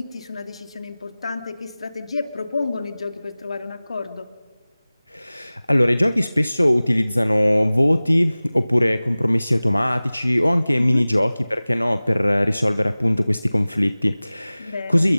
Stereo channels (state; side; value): inverted; both; correlation -0.98